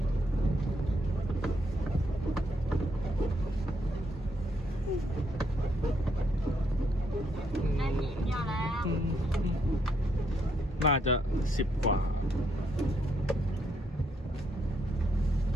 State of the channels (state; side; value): normal; both; correlation 0.75